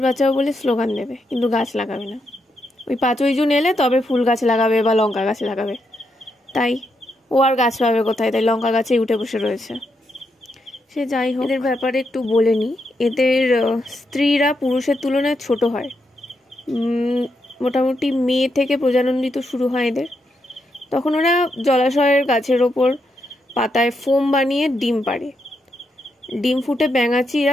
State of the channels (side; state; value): both; normal; correlation 0.81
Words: বাঁচাও বলে স্লোগান দেবে, কিন্তু গাছ লাগাবে না। ওই 5ই জুন এলে তবে ফুল গাছ লাগাবে বা লঙ্কা গাছ লাগাবে। তাই ও আর গাছ পাবে কোথায়? তাই লঙ্কা গাছেই উঠে বসে রয়েছে। সে যাই হোক, এদের ব্যাপারে একটু বলে নিই। এদের স্ত্রীরা পুরুষের তুলনায় ছোট হয়। মোটামুটি মে থেকে প্রজনন ঋতু শুরু হয় এদের। তখন ওরা জলাশয়ের গাছের ওপর পাতায় ফোম বানিয়ে ডিম পাড়ে। ডিম ফুটে